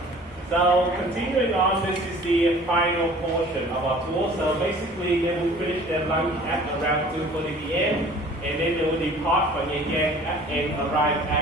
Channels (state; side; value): normal; both; correlation 0.49